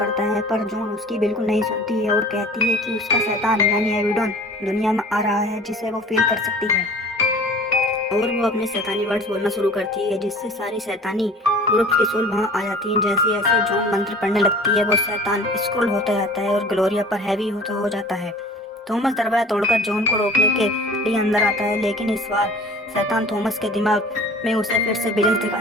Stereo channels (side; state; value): both; normal; correlation 0.45